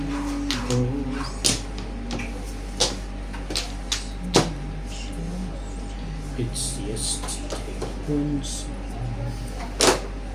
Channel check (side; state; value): both; identical; correlation 1.00